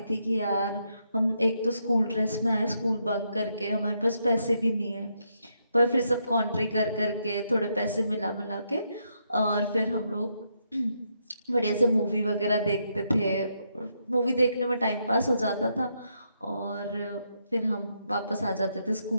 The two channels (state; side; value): inverted; both; correlation -0.79